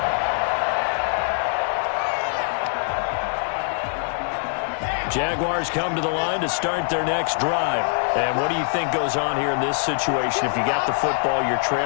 Jaguars come to the line to start their next drive. And what do you think goes on here in this situation? If you got the football, you're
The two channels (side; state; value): right; silent; digital silence